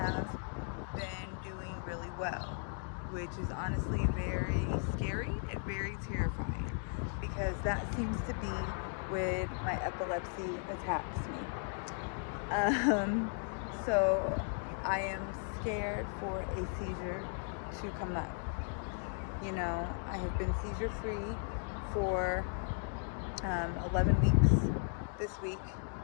been doing really well, which is honestly very scary and very terrifying because that seems to be when my epilepsy attacks me. So I am scared for a seizure to come up. You know, I have been seizure free for 11 weeks this week,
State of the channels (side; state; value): right; silent; 54 dB below the other